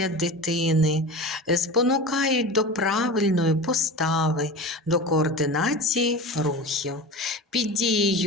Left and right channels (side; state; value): both; normal; correlation 0.31